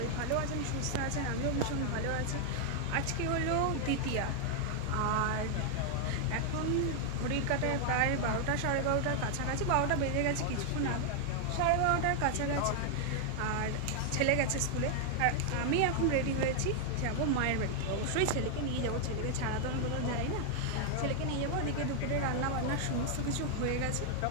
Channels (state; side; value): different; both; correlation 0.00